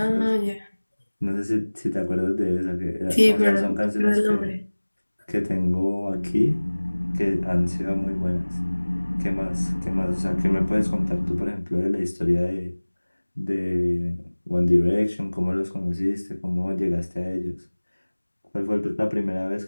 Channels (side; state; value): both; inverted; correlation -1.00